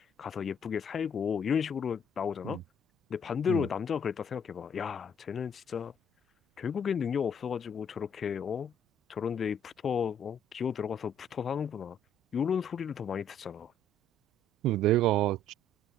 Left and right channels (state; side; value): normal; both; correlation 0.62